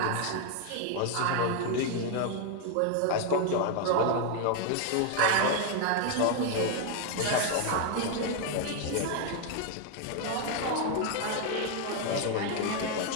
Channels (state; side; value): different; both; correlation 0.00